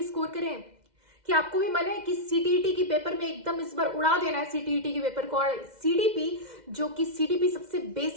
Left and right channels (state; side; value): late; left; 2.0 ms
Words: स्कोर करें? क्या आपको भी मन है कि सीटीईटी की पेपर में एकदम इस बार उड़ा देना है सीटीईटी के पेपर को, और सीडीपी जो कि सीडीपी सबसे